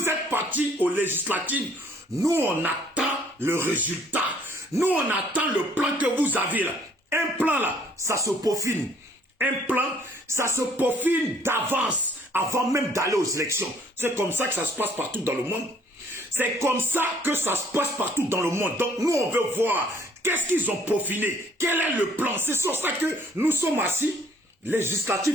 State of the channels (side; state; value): both; normal; correlation 0.60